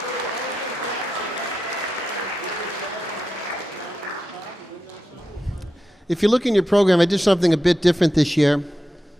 if you look in your program, I did something a bit different this year.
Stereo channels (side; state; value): both; normal; correlation 0.89